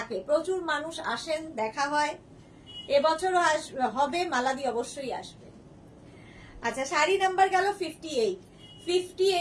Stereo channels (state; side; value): identical; both; correlation 1.00